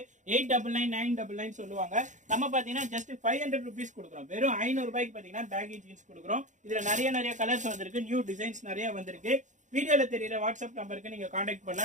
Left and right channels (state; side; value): late; left; 0.36 ms